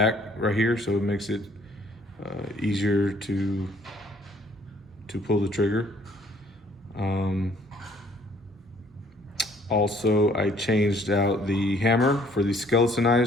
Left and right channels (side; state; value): both; normal; correlation 0.61